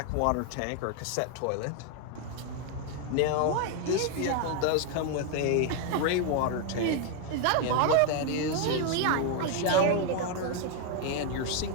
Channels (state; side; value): different; both; correlation 0.01